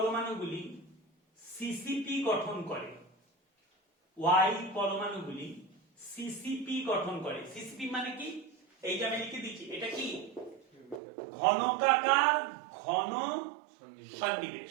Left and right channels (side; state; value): left; drops out; at 11.0 s